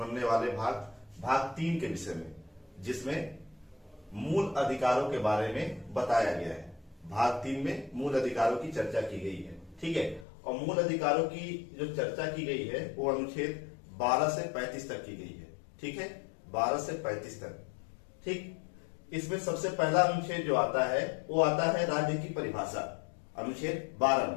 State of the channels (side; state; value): right; drops out; at 10.2 s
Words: वाले भाग 3 के विषय में, जिसमें मूल अधिकारों के बारे में बताया गया है। भाग 3 में मूल अधिकारों की चर्चा की गई है, ठीक है। और मूल अधिकारों की जो चर्चा की गई है वो अनुच्छेद 12 से 35 तक की गई है, ठीक है। 12 से 35 तक, ठीक। इसमें सबसे पहला अनुच्छेद जो आता है वो आता है राज्य की परिभाषा। अनुच्छेद 12